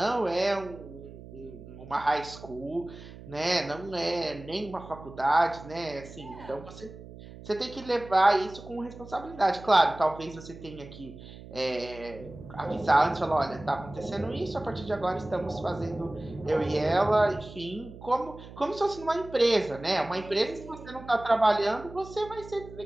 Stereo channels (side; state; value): right; noise; hum, 16 dB below the sound